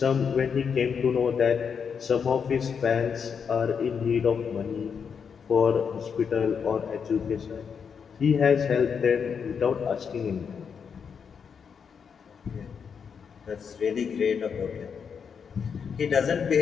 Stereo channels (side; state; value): right; quieter; 6.6 dB